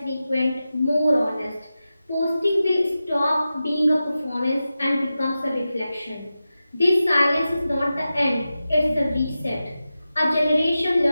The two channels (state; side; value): inverted; both; correlation -0.93